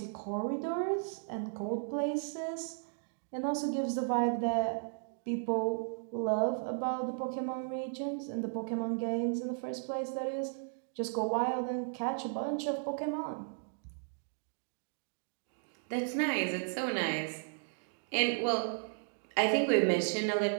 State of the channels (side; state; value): left; silent; digital silence